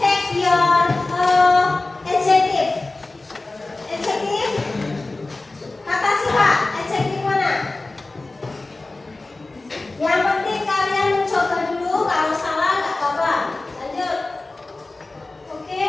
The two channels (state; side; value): quieter; right; 3.2 dB